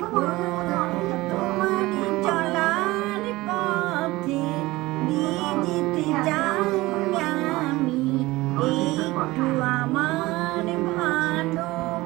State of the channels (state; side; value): quieter; left; 19.6 dB